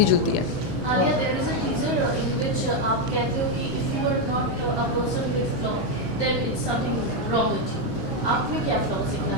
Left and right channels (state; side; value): normal; both; correlation 0.04